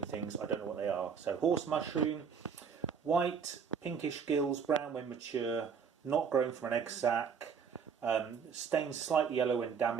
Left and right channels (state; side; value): quieter; left; 6.5 dB